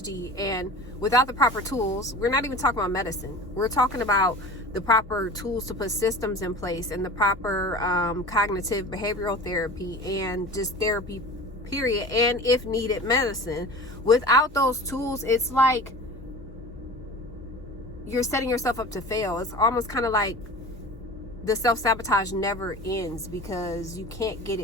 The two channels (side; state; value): both; normal; correlation 0.37